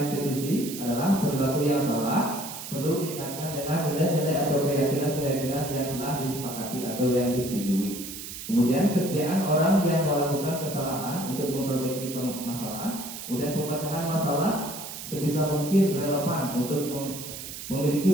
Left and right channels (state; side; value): noise; right; hiss, 10 dB below the sound